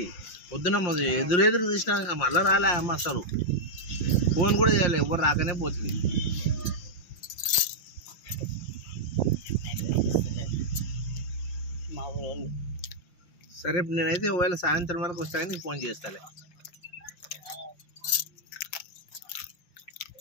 పొద్దున ఎదురెదురు తీసినాక మళ్ళీ రాలే అమ్మ. అసలు ఫోన్ కూడా చేయాలి, ఎవరు రాకనే పోతుంది. మా ఊరు సరే నేనైతే ఒకవేళ సాయంత్రం వరకు వస్తా కానీ నీకు ఫోన్ చేస్తాలే.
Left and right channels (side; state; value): right; late; 5.7 ms